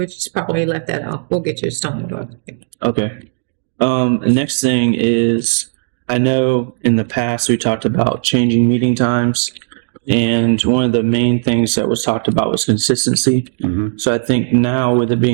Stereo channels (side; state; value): left; silent; 66 dB below the other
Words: just probably let that off. We'll get you a stormwater. Okay. The next thing is, I know in the past we talked about changing meeting times, and one of the main things that was talked about was consistency. Mm-hmm. So I think now, with it